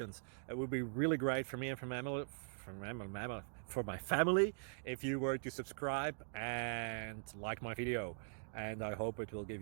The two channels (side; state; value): left; silent; digital silence